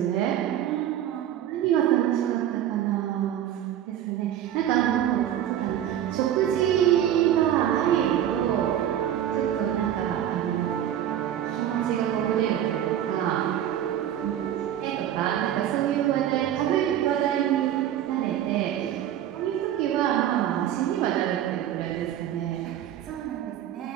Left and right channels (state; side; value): quieter; left; 11.0 dB